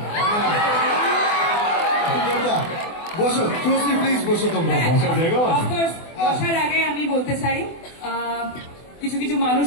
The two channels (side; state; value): right; late; 24 ms